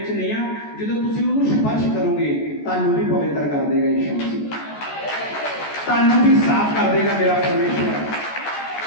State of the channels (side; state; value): right; late; 14 ms